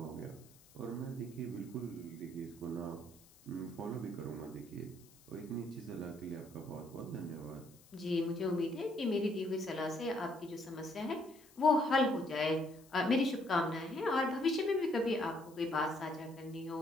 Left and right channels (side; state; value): left; noise; hiss, 25 dB below the sound